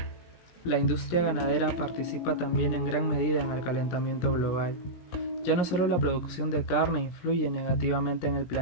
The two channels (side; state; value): right; late; 17 ms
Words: La industria ganadera participa también en gran medida en el calentamiento global. Ya no solo la producción de carne influye negativamente en el